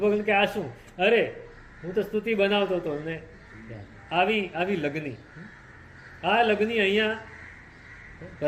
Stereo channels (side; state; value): both; identical; correlation 1.00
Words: કે આ શું? અરે હું તો સ્તુતિ બનાવતો હતો. ને આવી લગ્ની, આ લગ્ની અહીંયા